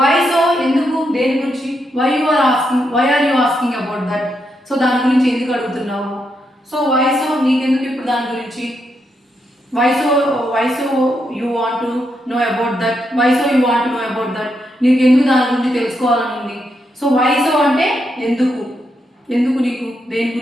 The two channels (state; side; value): normal; both; correlation 0.81